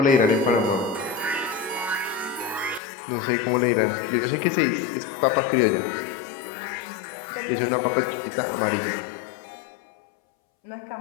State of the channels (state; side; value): drops out; right; at 2.8 s